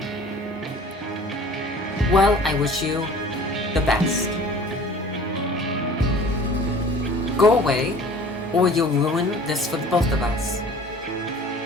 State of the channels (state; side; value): normal; both; correlation 0.46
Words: Well, I wish you the best. Go away, or you'll ruin this for the both of us.